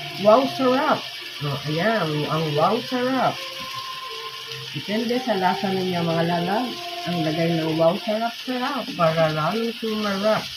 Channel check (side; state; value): both; identical; correlation 1.00